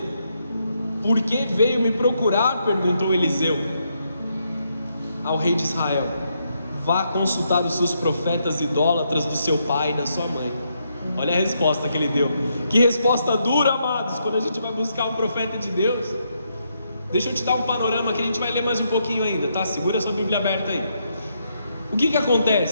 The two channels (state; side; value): inverted; both; correlation -0.78